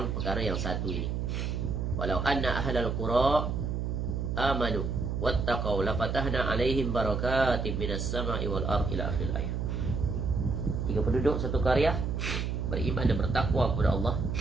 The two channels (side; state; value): right; noise; hum, 1 dB below the sound